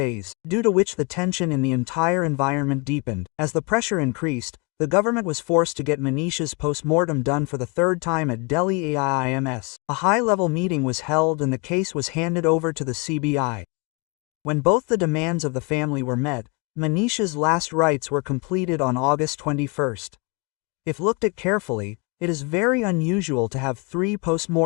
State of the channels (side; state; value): right; quieter; 30.7 dB